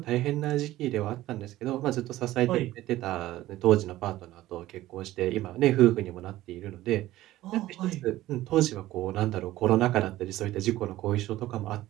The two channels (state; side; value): quieter; left; 15.7 dB